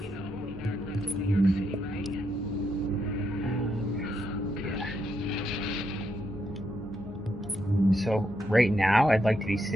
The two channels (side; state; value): both; normal; correlation 0.79